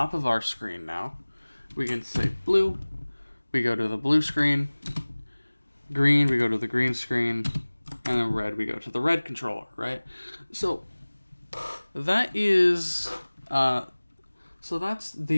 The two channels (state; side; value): inverted; both; correlation -1.00